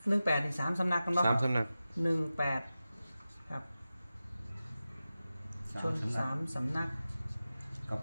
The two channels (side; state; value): both; inverted; correlation -0.94